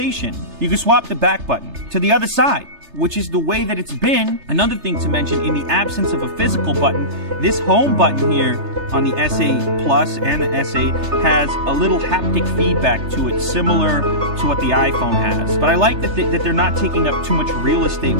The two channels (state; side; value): late; left; 3.3 ms